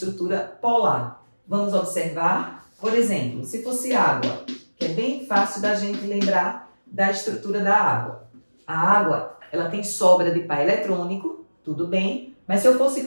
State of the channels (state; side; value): inverted; both; correlation -1.00